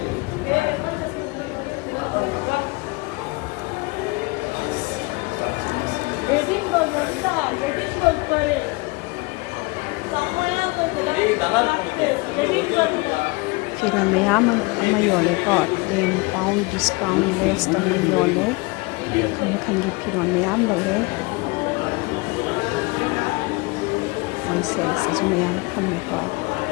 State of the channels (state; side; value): quieter; right; 26.0 dB